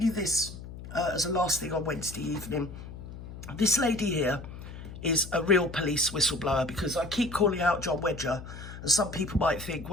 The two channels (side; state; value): left; noise; hum, 12 dB below the sound